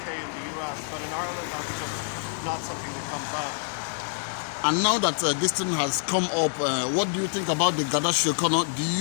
and the US, but in Ireland that's just not something that comes up. And now that this thing has come up, what do you think about the Garda Síochána?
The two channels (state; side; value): silent; right; 60 dB below the other